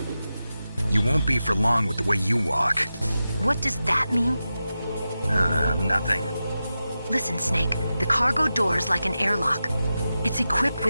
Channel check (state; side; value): inverted; both; correlation -0.92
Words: You won't be for long with the way you walk. What does that mean? Nothing. Listen, Snake, the cargo door is like an airlock. It's equipped